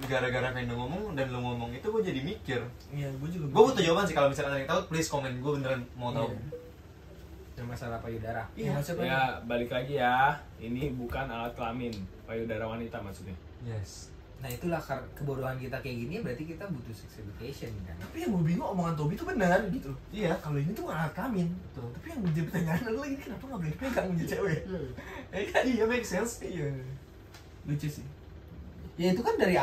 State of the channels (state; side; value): identical; both; correlation 1.00